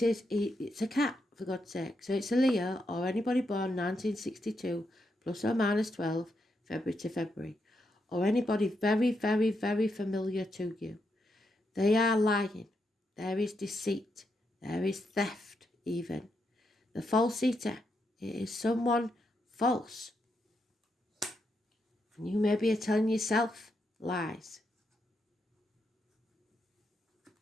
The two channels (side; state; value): both; normal; correlation 0.82